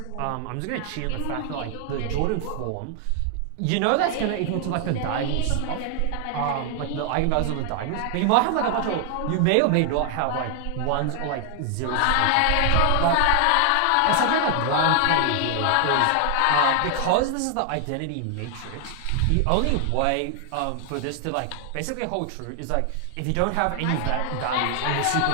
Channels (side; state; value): both; different; correlation 0.00